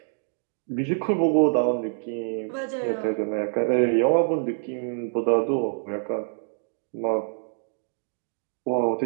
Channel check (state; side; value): silent; left; digital silence